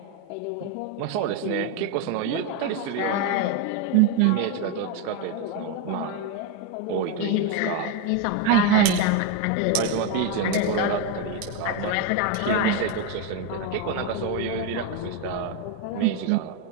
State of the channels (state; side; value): different; both; correlation 0.02